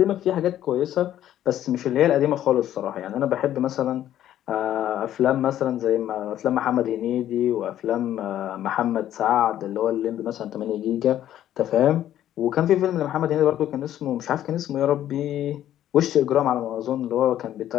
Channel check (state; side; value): quieter; right; 11.9 dB